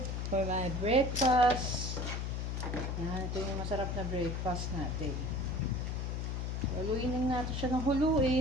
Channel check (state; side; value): noise; left; hum, 2 dB below the sound